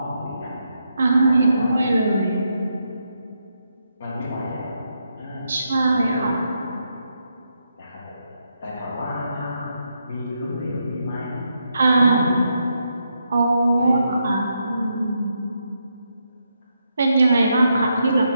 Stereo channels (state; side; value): inverted; both; correlation -0.81